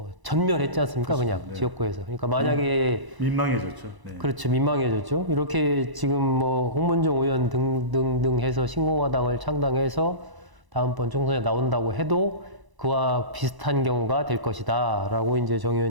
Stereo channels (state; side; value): late; left; 1.0 ms